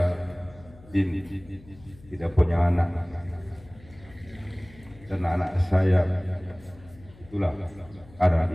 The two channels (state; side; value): noise; left; hum, 23 dB below the sound